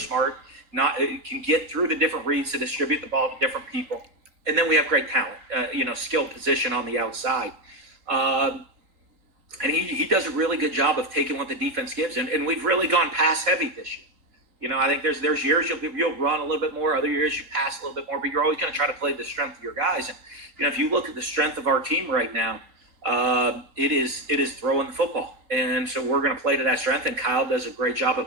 can get through the different reads to distribute the ball to different people. And then we have great talent, skill position on the outside. And he does a really good job of taking what the defense gives. And we've really gone pass heavy this year. I think there's years you'll run a little bit more. Other years you pass a little bit more. But you're always going to try to play the strength of your guys. And, if you look at the strength of our team right now, it is throwing the football. And so we're going to play to that strength. And Kyle does a great job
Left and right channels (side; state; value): left; late; 3.8 ms